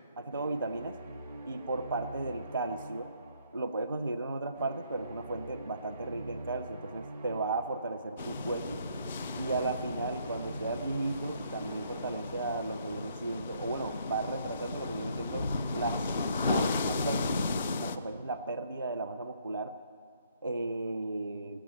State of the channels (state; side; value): inverted; both; correlation -0.68